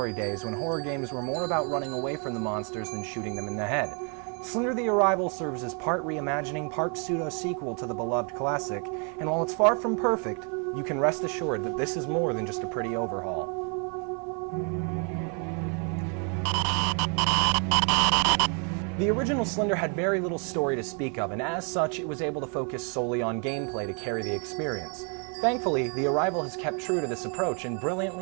days when horror games were more about running away from the monsters than shooting them in the head. Slender the Arrival serves as part reimagining, part pseudo-sequel to the beloved classic, and while it's far from perfect, you can rest assured that this is more than just a pretty overhaul. The original Slender had very little story to speak of, and as such, it was able to focus solely on gameplay to carry the experience. Thankfully, The Arrival has kept true to this approach and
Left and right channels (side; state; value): left; quieter; 38.2 dB